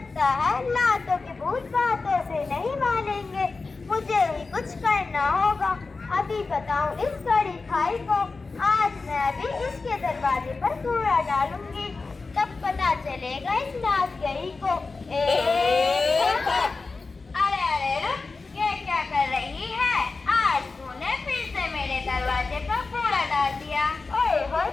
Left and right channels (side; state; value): right; quieter; 4.0 dB